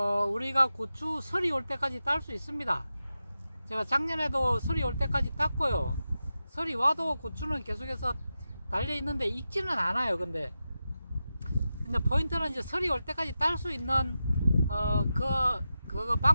우리가 고추 설이 올 때까지 딸 수 있습니다. 제가 작년에도 설이 올 때까지 땄고요. 설이 와도 고추는 계속해서 달려 있는데 익지는 않아요. 근데 포인트는 이제 설이 올 때까지 딸 수 있는 그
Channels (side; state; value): both; inverted; correlation -0.91